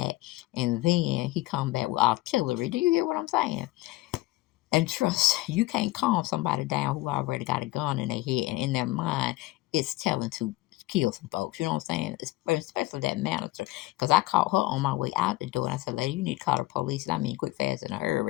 and then he come back with artillery. Do you hear what I'm saying? And trust, you can't calm somebody down who already got a gun in their head and in their mind it's telling to kill some folks. You know what I'm saying? Especially that manager. Because I caught her on my way out the door, and I said, lady, you need to call the police. And I mean, quick, fast, in a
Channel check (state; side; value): quieter; right; 19.2 dB